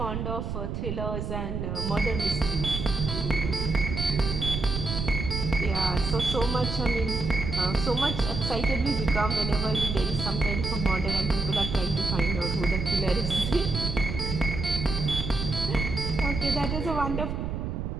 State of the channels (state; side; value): noise; right; rumble, 4 dB below the sound